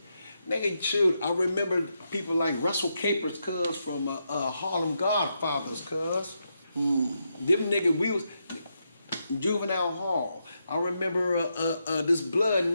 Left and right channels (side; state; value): both; inverted; correlation -0.83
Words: shoot. I remember people like Russell Capers, cuz, from Harlem Godfathers, cuz. Them niggas, we was juvenile hall. I remember this blood